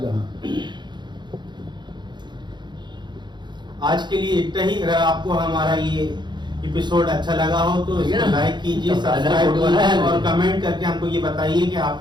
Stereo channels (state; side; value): late; left; 0.21 ms